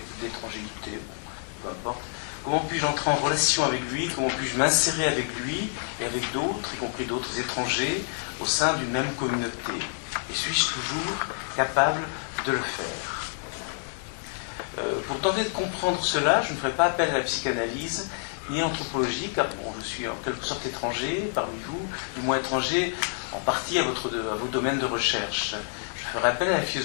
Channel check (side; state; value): right; silent; digital silence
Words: d'étrangérité. Bon, peu importe. Comment puis-je entrer en relation avec lui? Comment puis-je m'insérer avec lui et avec d'autres, y compris d'autres étrangers, au sein d'une même communauté? Et suis-je toujours capable de le faire? Pour tenter de comprendre cela, je ne ferai pas appel à la psychanalyse ni à l'anthropologie, car bon, je suis en quelque sorte étranger parmi vous, du moins étranger en partie à vos domaines de recherche. Je ferai appel à la